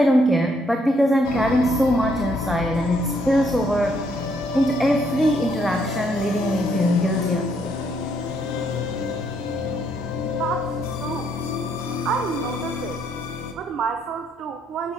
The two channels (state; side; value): normal; both; correlation 0.71